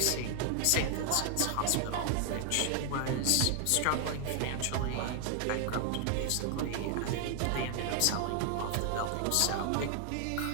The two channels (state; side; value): different; both; correlation 0.00